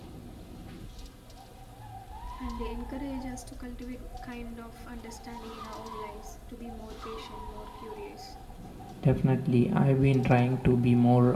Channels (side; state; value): both; identical; correlation 1.00